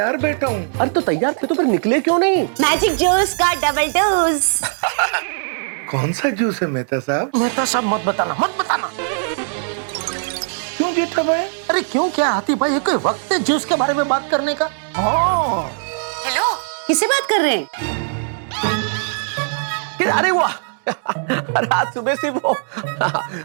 बैठा हूँ। अरे तो तैयार थे तो फिर निकले क्यों नहीं? मैजिक जूस का डबल डोज। कौन सा जूस है मेहता साहब? मेहता साहब मत बताना, मत बताना। क्यों जेठा भाई? अरे क्यों क्या हाथी भाई, ये कोई वक्त है जूस के बारे में बात करने का? हाँ हेलो, किससे बात कर रहे हैं? अरे वाह अरे आज सुबह से वो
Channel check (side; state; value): left; silent; digital silence